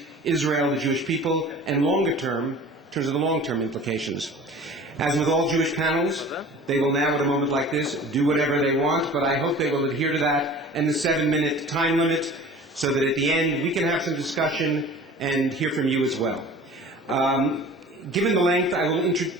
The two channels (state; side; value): normal; both; correlation 0.42